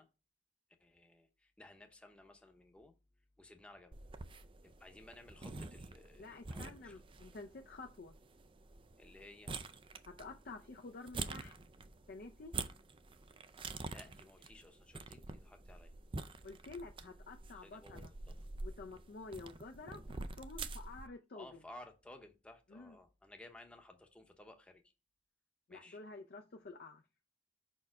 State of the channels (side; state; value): both; normal; correlation 0.54